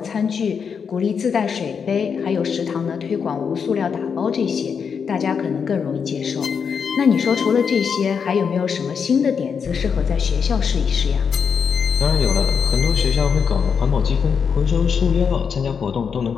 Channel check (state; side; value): quieter; right; 6.4 dB